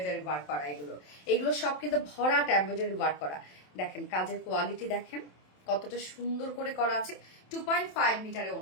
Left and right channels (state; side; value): late; right; 27 ms